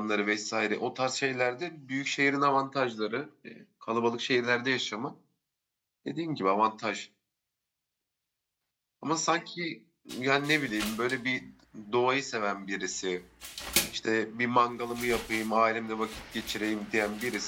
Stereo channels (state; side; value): identical; both; correlation 1.00